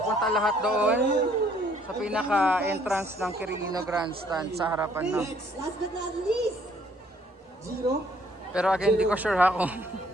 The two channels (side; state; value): both; normal; correlation 0.63